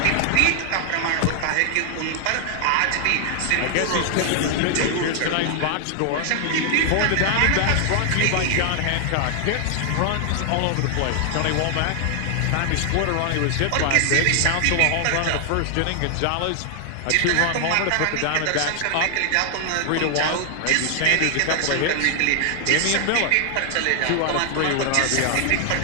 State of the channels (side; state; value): both; different; correlation 0.00